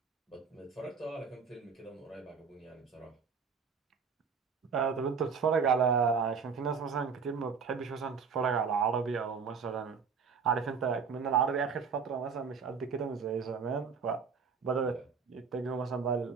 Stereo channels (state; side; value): quieter; left; 5.9 dB